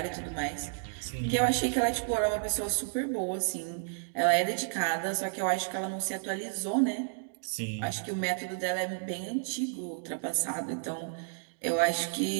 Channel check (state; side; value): silent; left; digital silence